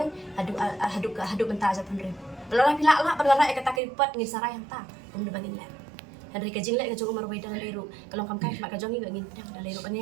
hadu mentah ajar penrem belara pila la belara kata keripot ngi sarai yang ta kemudian bangin le Henry ka jingle ka jong umar way dalam leru kalau kam kai mak ka jong ngin pedang dalam leru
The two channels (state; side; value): drops out; left; at 3.8 s